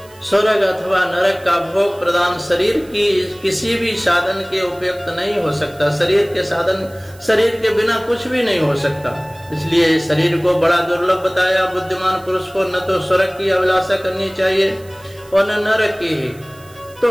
स्वर्ग अथवा नरक का भोग प्रदान शरीर की किसी भी साधन के उपयुक्त नहीं हो सकता। शरीर के बिना कुछ भी नहीं हो सकता। इसलिए शरीर को बड़ा दुर्लभ बताया। बुद्धिमान पुरुष को न तो स्वर्ग की अभिलाषा करनी चाहिए और न नरक की ही।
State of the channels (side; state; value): right; noise; hiss, 25 dB below the sound